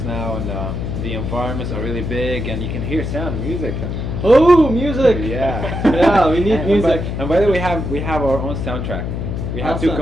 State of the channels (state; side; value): noise; left; hum, 4 dB below the sound